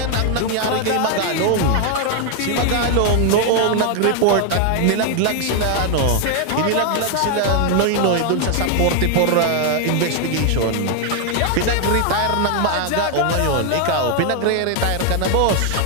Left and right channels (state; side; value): different; both; correlation 0.00